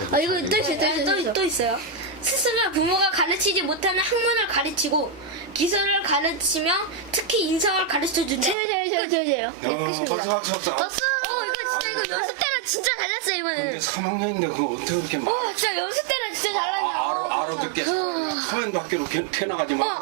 이거 또 있어요. 스승은 부모가 가르치지 못하는 학문을 가르치고 기술을 가르치며 특히 인성을 가르쳐준다. 제요. 박수. 이거 연습 때는 진짜 달랐어요 이번에. 근데 3학년인데 그거 어떻게 그렇게 말을 진짜 연습 때는 진짜 달랐냐. 알아듣게 잘하냐? 카멘 밖으로 튀어나가지 마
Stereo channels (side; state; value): left; drops out; at 8.6 s